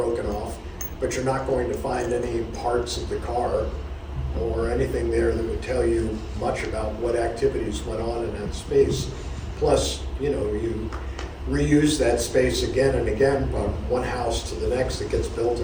off, but you're not going to find any parts of the car or anything there that would tell you much about what activities went on in that space. Plus, you know, you reuse that space again and again from one house to the next that gets built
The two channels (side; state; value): both; identical; correlation 1.00